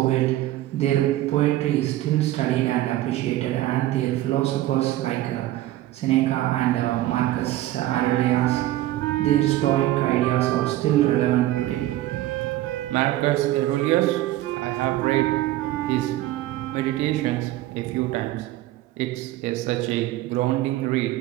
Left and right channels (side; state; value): left; quieter; 15.2 dB